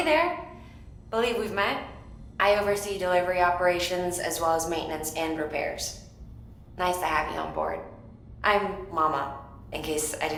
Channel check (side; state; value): both; identical; correlation 1.00